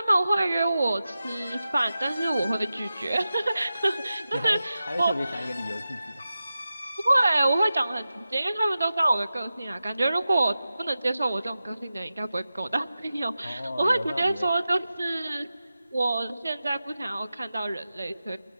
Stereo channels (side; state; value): both; inverted; correlation -0.93